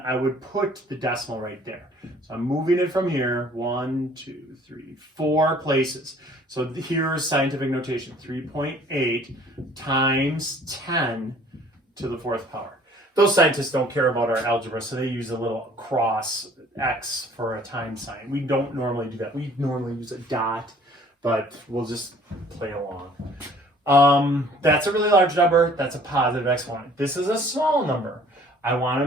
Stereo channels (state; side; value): normal; both; correlation 0.54